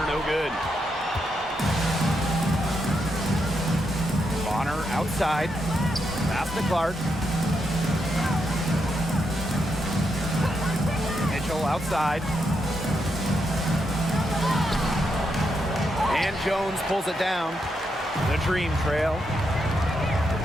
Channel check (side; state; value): both; normal; correlation 0.82